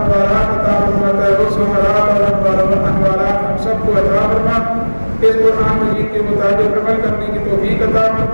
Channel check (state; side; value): inverted; both; correlation -1.00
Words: عطا فرماتا ہے وہ ثمرات اور انوارات ہم سب کو عطا فرما، اس قرآن مجید کے مطابق عمل کرنے کی توفیق عطا